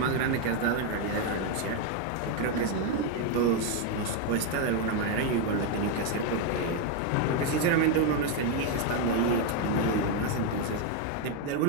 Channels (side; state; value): both; different; correlation 0.02